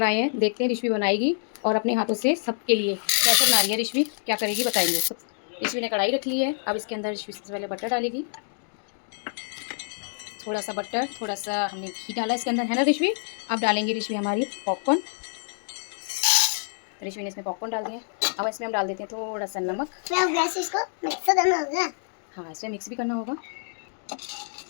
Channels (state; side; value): silent; right; digital silence